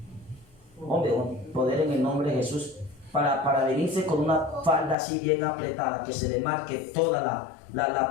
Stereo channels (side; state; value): right; drops out; at 5.0 s